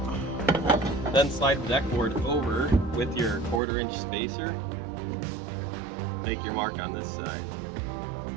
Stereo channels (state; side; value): drops out; left; at 3.6 s